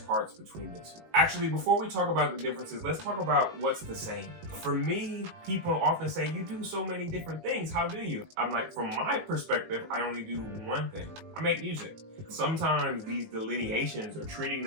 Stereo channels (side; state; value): left; late; 18 ms